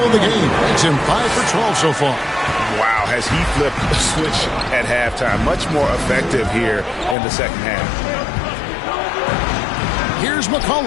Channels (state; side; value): drops out; right; at 7.2 s